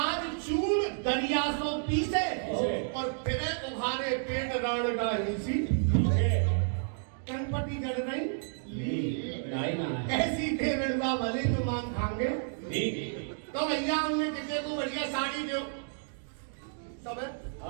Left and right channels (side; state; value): left; silent; digital silence